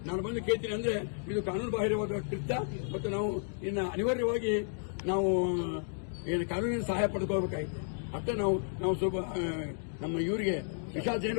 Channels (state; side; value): silent; right; digital silence